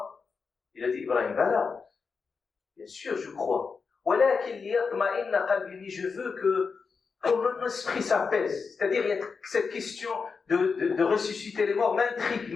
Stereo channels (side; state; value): right; quieter; 5.1 dB